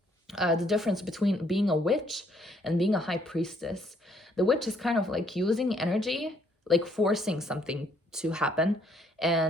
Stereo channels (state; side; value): normal; both; correlation 0.67